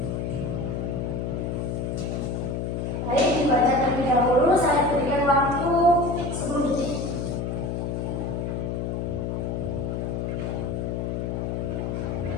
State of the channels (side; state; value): left; noise; hum, 2 dB below the sound